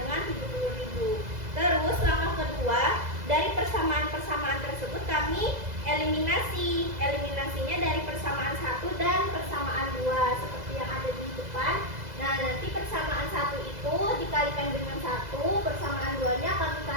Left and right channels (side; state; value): left; late; 2.0 ms